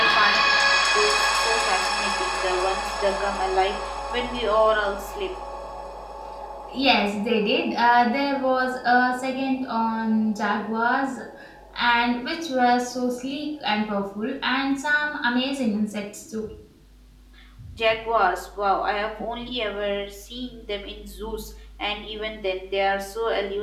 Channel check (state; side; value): identical; both; correlation 1.00